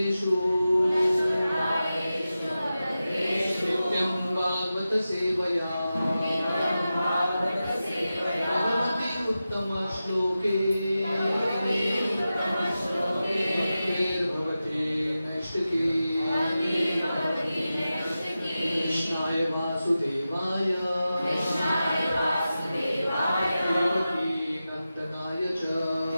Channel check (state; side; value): inverted; both; correlation -0.93